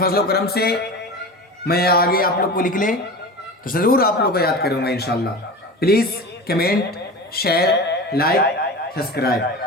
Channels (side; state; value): both; normal; correlation 0.31